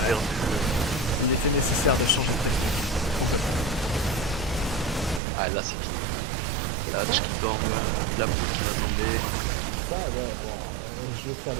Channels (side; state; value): left; drops out; at 5.2 s